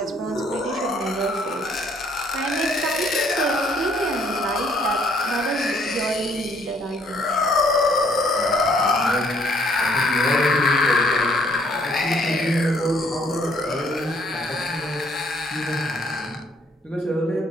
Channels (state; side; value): normal; both; correlation 0.65